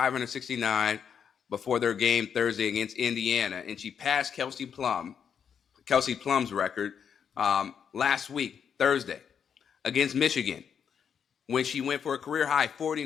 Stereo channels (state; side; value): quieter; right; 7.5 dB